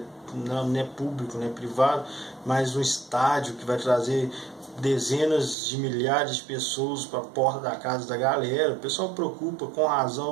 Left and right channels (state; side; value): drops out; left; at 5.6 s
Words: não é público, não é privado, mas um estádio que vai trazer dezenas de milhares de pessoas para a porta da casa da galera. O pessoal preocupa com